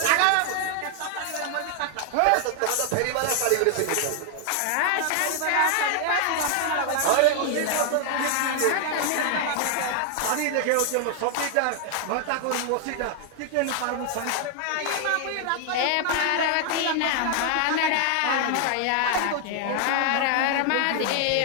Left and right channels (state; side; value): different; both; correlation 0.00